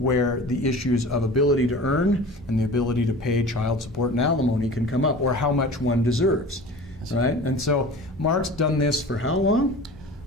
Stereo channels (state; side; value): normal; both; correlation 0.38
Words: the issues of ability to earn and the ability to pay child support and alimony can come up, or how much one deserves, right? And so Mark's done this for how long?